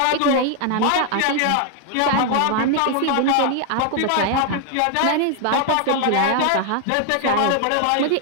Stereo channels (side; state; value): both; different; correlation 0.00